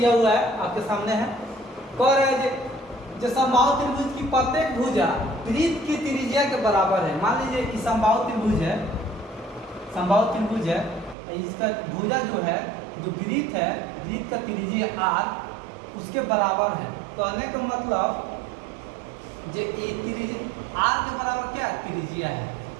हुआ है, आपके सामने है। कह रहा है जो समबाहु त्रिभुज की प्रत्येक भुजा वृत्त की त्रिज्या के बराबर है। मान लीजिए कि समबाहु त्रिभुज है, समबाहु त्रिभुज है, इसका भुजा जो है, जो वृत्त है, वृत्त का त्रिज्या r उसके बराबर है। कहने का मतलब जो ये त्रिज्या r के बराबर क्या है, त्रिज्या है।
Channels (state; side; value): drops out; left; at 11.2 s